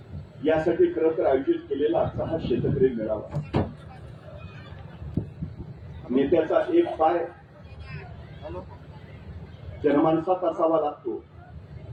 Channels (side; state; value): both; identical; correlation 1.00